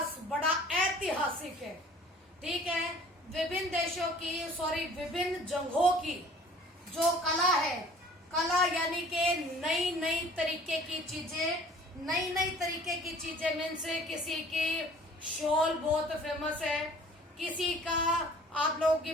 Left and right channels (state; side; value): normal; both; correlation 0.50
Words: बड़ा ऐतिहासिक है, ठीक है। विभिन्न देशों की, विभिन्न जगहों की जो कला है, कला यानी कि नई नई तरीके की चीजें, नई नई तरीके की चीजें मीन से किसी की शॉल बहुत फेमस है, किसी का आप लोगों की